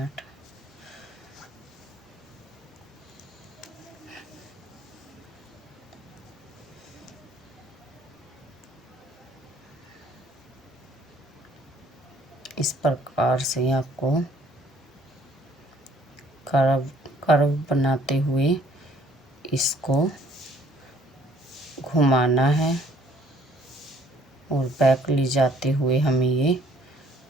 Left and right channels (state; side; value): normal; both; correlation 0.60